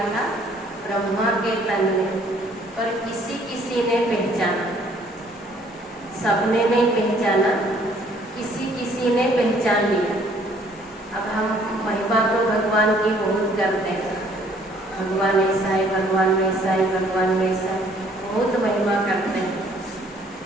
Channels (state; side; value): normal; both; correlation 0.60